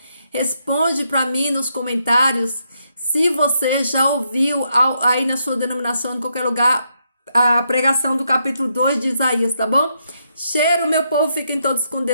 responde para mim nos comentários se você já ouviu aí na sua denominação, em qualquer lugar, a pregação do capítulo 2 de Isaías, tá bom? Cheiro, meu povo, fiquem todos com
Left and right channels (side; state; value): both; inverted; correlation -0.78